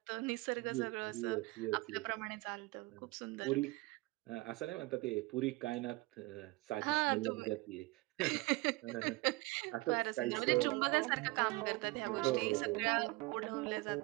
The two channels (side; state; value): left; quieter; 22.3 dB